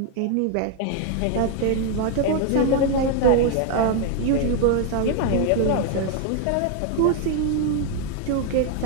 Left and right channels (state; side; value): different; both; correlation 0.00